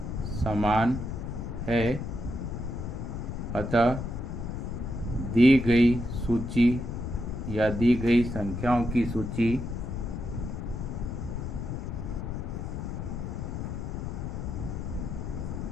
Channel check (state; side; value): noise; left; rumble, 5 dB below the sound